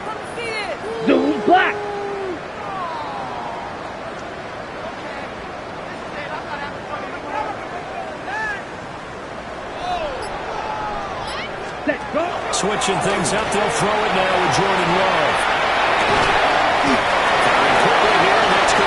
Zoom, Black. Set, go. Switching things up, they'll throw it now with Jordan Love. Quickly here, and that's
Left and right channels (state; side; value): identical; both; correlation 1.00